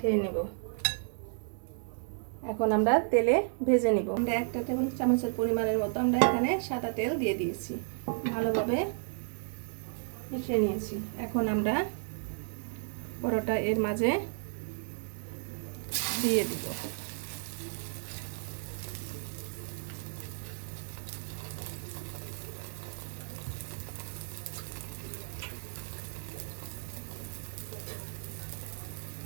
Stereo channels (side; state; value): left; silent; 56 dB below the other